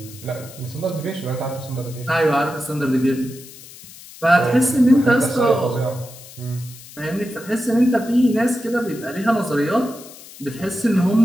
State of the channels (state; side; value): noise; left; hiss, 18 dB below the sound